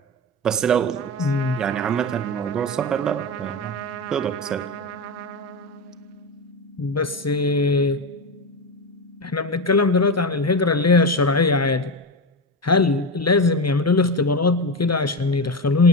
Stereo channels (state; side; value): normal; both; correlation 0.18